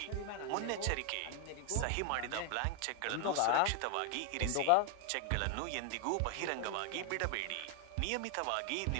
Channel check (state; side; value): different; both; correlation 0.00